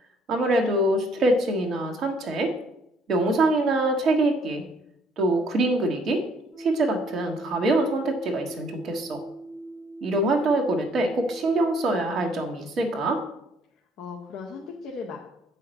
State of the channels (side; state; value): both; normal; correlation 0.63